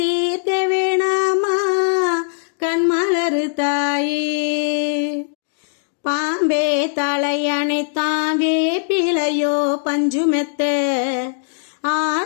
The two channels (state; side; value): silent; right; digital silence